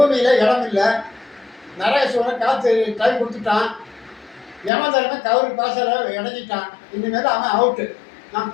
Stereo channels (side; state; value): right; drops out; at 4.7 s